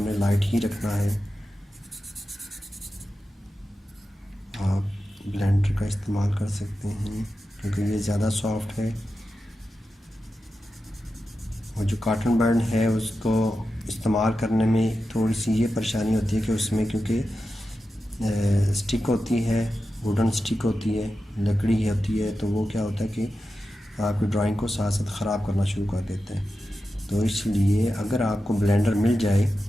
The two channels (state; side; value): normal; both; correlation 0.91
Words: लाइट ही रखना है। आप ब्लेंडर का इस्तेमाल कर सकते हैं क्योंकि ये ज़्यादा सॉफ्ट है। और जो कॉटन बैंड है उसको इस्तेमाल करने में थोड़ी सी ये परेशानी होती है कि उसमें क्योंकि स्टिक होती है, वुडन स्टिक होती है, लकड़ी होती है, तो वो क्या होता है कि आपकी ड्राइंग को साथ साथ ख़राब करना शुरू कर देते हैं। तो इसलिए अगर आपको ब्लेंडर मिल जाए